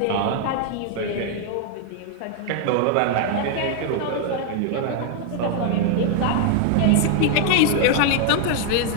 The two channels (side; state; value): both; different; correlation 0.00